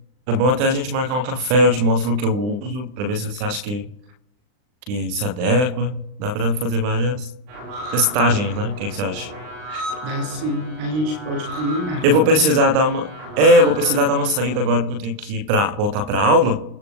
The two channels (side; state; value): left; late; 39 ms